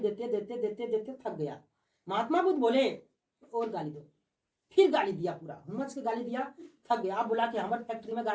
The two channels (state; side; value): identical; both; correlation 1.00